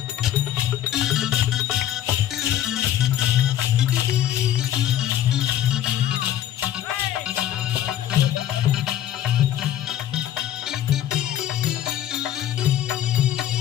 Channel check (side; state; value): right; quieter; 11.7 dB